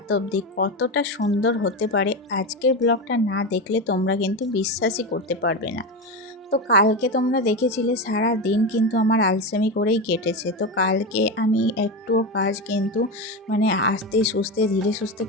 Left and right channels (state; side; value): normal; both; correlation 0.17